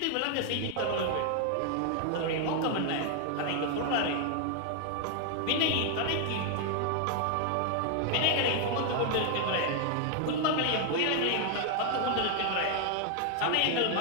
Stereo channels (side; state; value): both; different; correlation 0.00